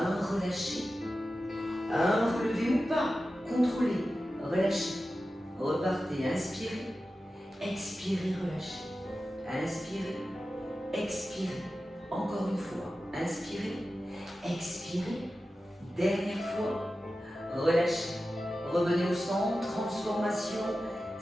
relâché, un relevé ou pas, contrôlez, relâchez. Repartez, inspirez, expirez, relâchez. Inspirez, expirez. Encore une fois, inspirez, expirez. Dernière fois, relâchez. Revenez au centre, transformation.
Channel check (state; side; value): normal; both; correlation 0.93